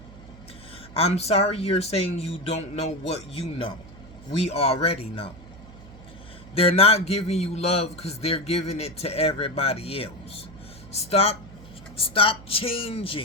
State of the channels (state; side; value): noise; right; hum, 19 dB below the sound